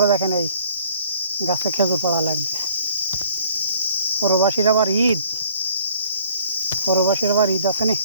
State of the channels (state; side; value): inverted; both; correlation -0.57